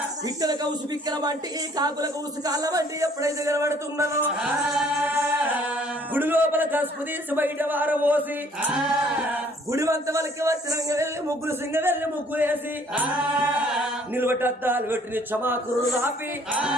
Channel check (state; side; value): normal; both; correlation 0.59